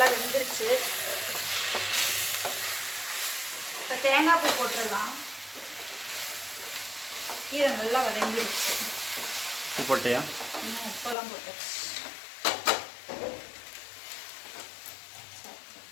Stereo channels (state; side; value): drops out; right; at 11.2 s